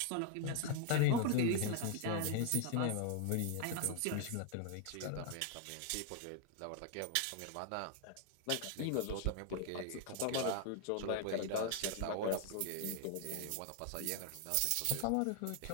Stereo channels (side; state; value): both; different; correlation 0.00